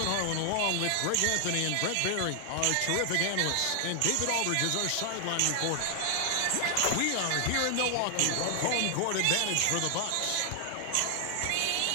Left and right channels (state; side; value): different; both; correlation 0.00